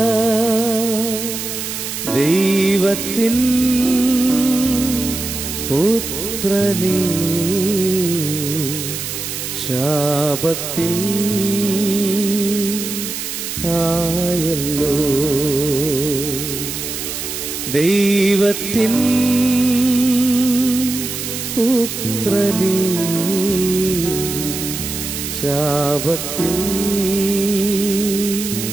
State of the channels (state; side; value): noise; right; hiss, 5 dB below the sound